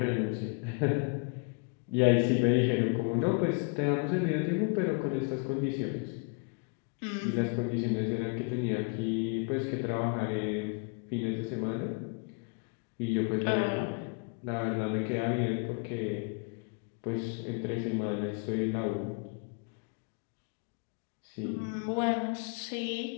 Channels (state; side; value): quieter; right; 34.2 dB